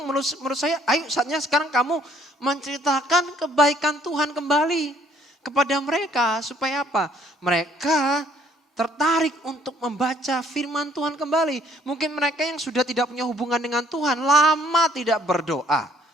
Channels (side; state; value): both; normal; correlation 0.62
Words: menurut saya, ayo saatnya sekarang kamu menceritakan kebaikan Tuhan kembali kepada mereka. Supaya apa? Mereka tertarik untuk membaca firman Tuhan kembali. Mungkin mereka yang sudah tidak punya hubungan dengan Tuhan, lama tidak berdoa.